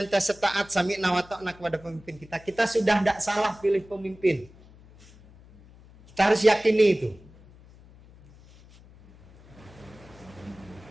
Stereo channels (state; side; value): noise; left; hum, 24 dB below the sound